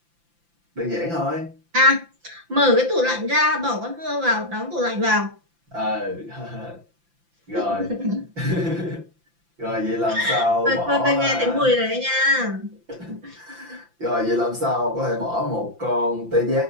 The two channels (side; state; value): left; late; 5.9 ms